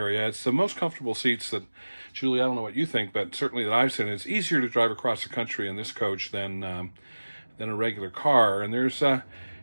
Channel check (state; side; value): inverted; both; correlation -1.00